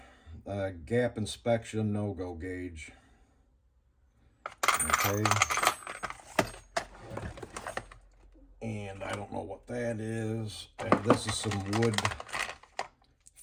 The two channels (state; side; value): identical; both; correlation 1.00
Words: Gap inspection, no-go gauge. Okay. And I don't know what that is. And this is some wood